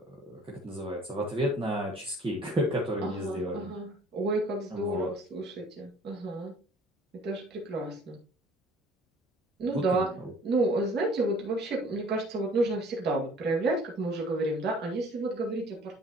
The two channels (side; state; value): both; normal; correlation 0.53